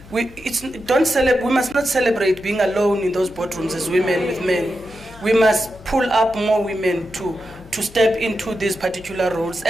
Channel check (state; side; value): noise; left; hum, 20 dB below the sound